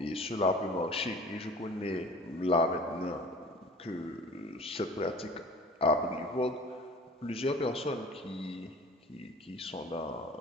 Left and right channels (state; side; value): normal; both; correlation 0.45